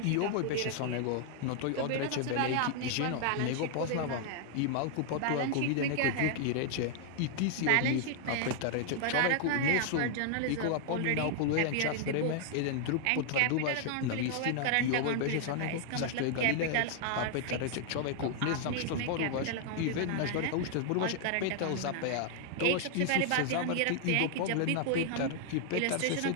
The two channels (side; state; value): both; different; correlation 0.00